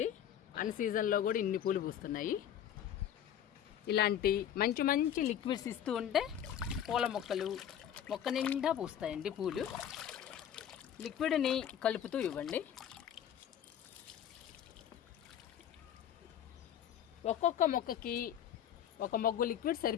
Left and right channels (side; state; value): right; quieter; 9.8 dB